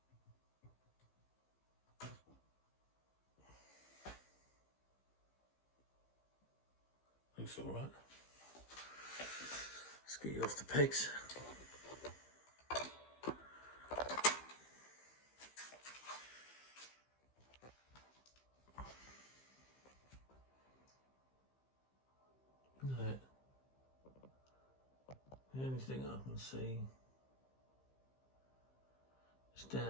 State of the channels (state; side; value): late; right; 15 ms